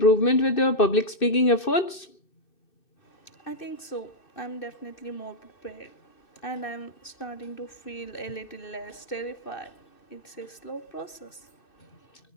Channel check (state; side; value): late; right; 2.6 ms